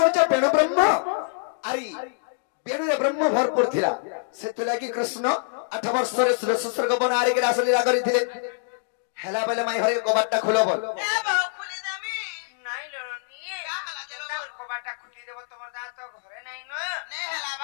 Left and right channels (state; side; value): silent; right; digital silence